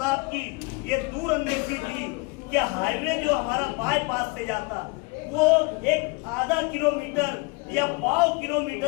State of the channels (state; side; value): quieter; right; 27.9 dB